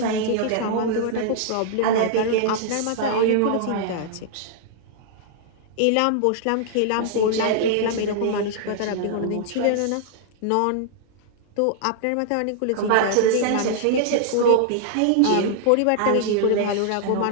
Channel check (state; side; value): different; both; correlation -0.01